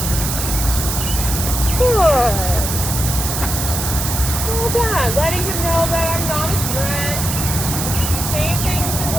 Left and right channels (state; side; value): noise; right; hiss, 3 dB below the sound